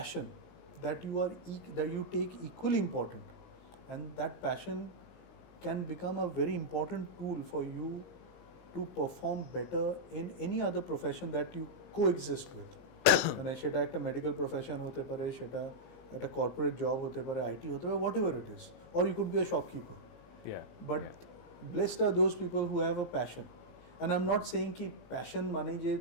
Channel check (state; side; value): late; right; 17 ms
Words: that that you take equally important, and that passion can become a very important tool for you to perform better in any other profession that you coexist with. মানে সেটা একটা medical profession হতে পারে, সেটা একটা corporate job হতে পারে, IT হতে পারে, whatever it is, or you could be a shopkeeper. But blessed are those people who have a passion. And I am not saying কি প্যাশন মানে যে